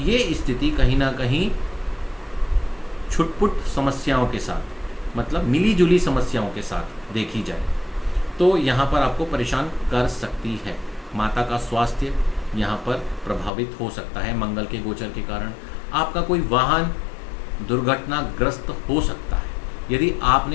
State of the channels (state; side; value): drops out; right; at 13.5 s